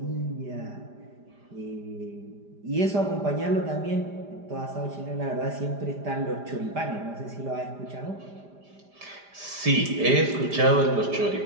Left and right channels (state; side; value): late; left; 5.0 ms